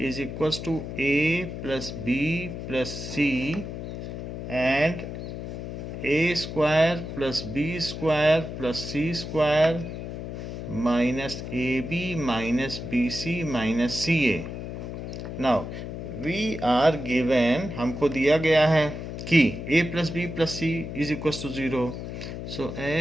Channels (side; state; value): left; noise; hum, 7 dB below the sound